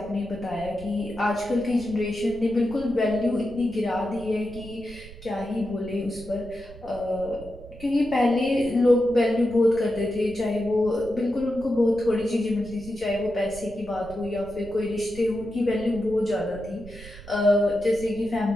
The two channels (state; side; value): noise; right; rumble, 17 dB below the sound